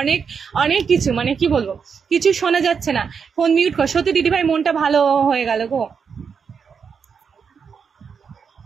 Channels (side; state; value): left; quieter; 6.3 dB